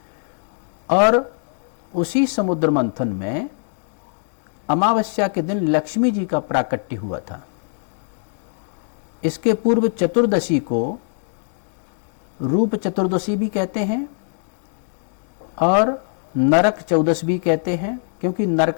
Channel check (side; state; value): right; silent; 63 dB below the other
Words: और उसी समुद्र मंथन में अमावस्या के दिन लक्ष्मी जी का प्राकट्य हुआ था। इसके पूर्व चतुर्दशी को रूप चतुर्दशी भी कहते हैं और नरक चौदश भी कहते हैं, क्योंकि